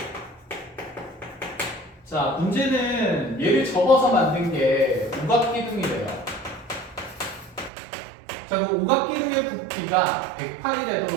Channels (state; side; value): drops out; left; at 7.7 s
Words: 자, 문제는 얘를 접어서 만든 게 오각기둥이래요. 자, 그 오각기둥의 부피가 108이